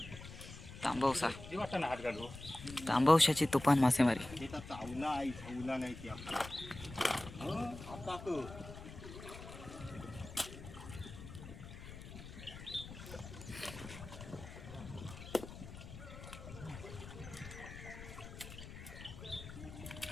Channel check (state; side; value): noise; left; rumble, 13 dB below the sound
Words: तांबवसा. तांबवशाची तुफान मासेमारी. चावला नाही ती आपला